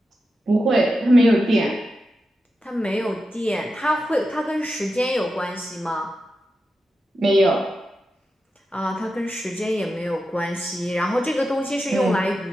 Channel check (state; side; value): normal; both; correlation 0.89